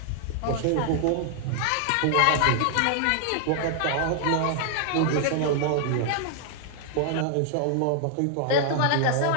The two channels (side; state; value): both; different; correlation 0.00